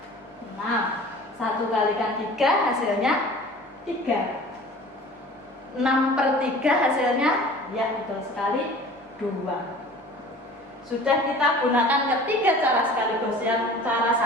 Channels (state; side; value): normal; both; correlation 0.44